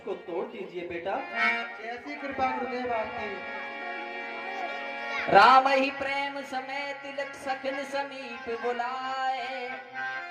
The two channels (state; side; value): identical; both; correlation 1.00